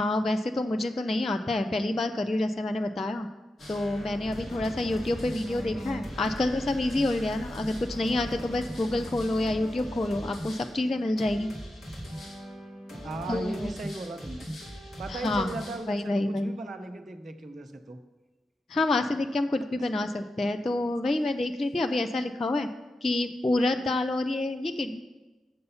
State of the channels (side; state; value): both; normal; correlation 0.89